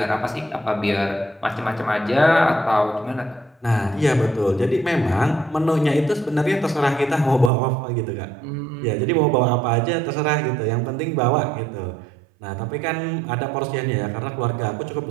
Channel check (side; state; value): left; drops out; at 7.5 s